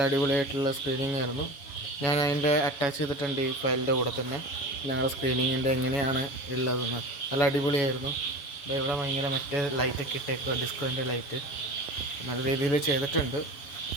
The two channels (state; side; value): late; right; 7.1 ms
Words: അടിപൊളിയായിട്ടുള്ള സ്ക്രീനിങ് ആയിരുന്നു. ഞാൻ അതിൻ്റെ അറ്റാച്ച് ചെയ്തിട്ടുണ്ട് ഈ ഫയലിൻ്റെ കൂടെ തന്നെ ഞങ്ങളുടെ സ്ക്രീനിങ്ങിൻ്റെ എങ്ങനെയാണ് ഉള്ളതെന്ന്. നല്ല അടിപൊളിയായിരുന്നു. ഇവിടെ ഭയങ്കര മറ്റേ ലൈറ്റൊക്കെ ഇട്ടേക്കുക, ഡിസ്കോൻ്റെ ലൈറ്റ് നല്ല രീതിയിൽ ചെയ്തിട്ടുണ്ട്.